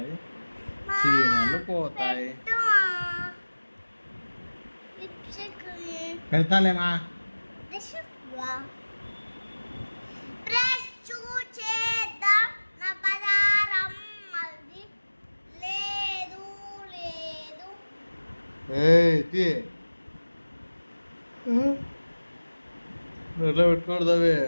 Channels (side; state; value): both; inverted; correlation -1.00